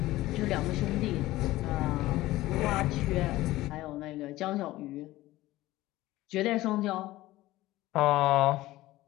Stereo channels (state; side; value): quieter; right; 17.0 dB